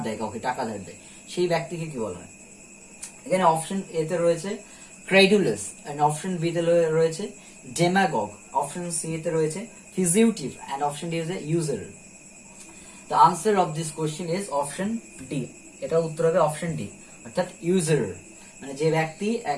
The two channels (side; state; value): both; identical; correlation 1.00